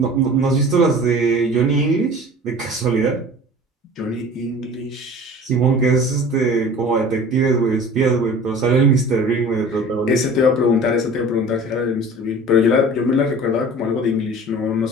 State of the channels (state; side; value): normal; both; correlation 0.42